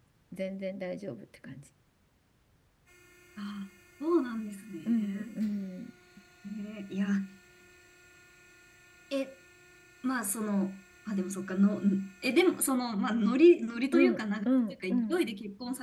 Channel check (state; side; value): identical; both; correlation 1.00